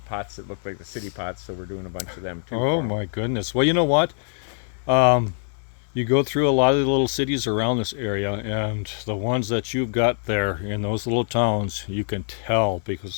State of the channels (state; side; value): silent; right; 62 dB below the other